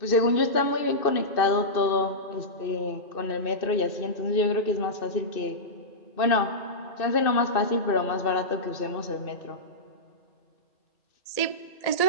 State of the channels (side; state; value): right; late; 2.6 ms